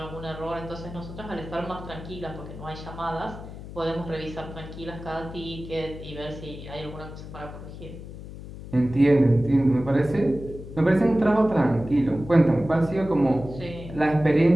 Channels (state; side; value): noise; left; hum, 12 dB below the sound